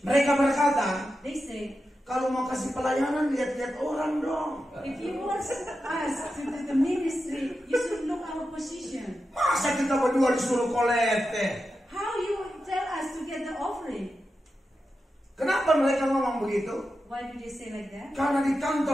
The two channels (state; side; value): normal; both; correlation 0.90